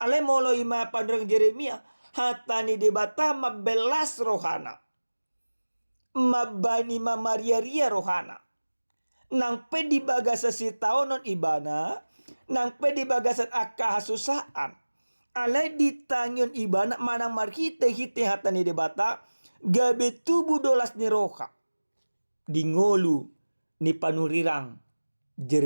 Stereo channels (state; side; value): inverted; both; correlation -1.00